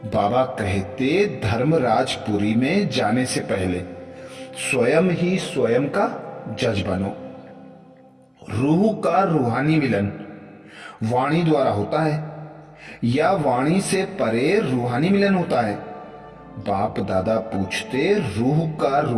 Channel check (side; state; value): both; identical; correlation 1.00